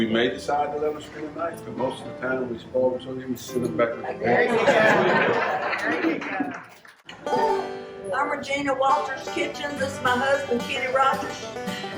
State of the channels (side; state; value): both; identical; correlation 1.00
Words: may decide to let them spend the night, but most of the time we spoil them so they can send them back with the parents. I'm Regina Walters Kitchen. This is my husband, Kenny Rogers.